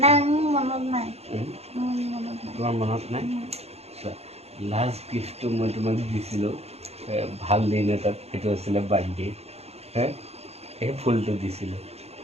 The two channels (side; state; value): left; late; 0.30 ms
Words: নাই মোৰ মনত নাই তোমাৰ মনত নাই লাষ্ট গিফ্টটো মই তোমাক দিছিলোঁ ভাল দিন এটাত সেইটো আছিলে বাৰ্থডে সেই ফুলটো দিছিলোঁ